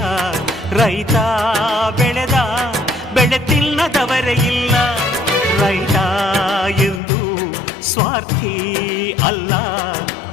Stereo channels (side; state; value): right; drops out; at 7.0 s